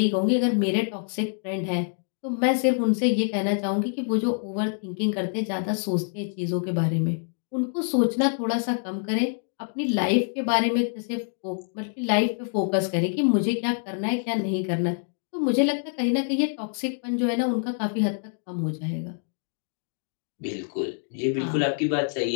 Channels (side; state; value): right; silent; 61 dB below the other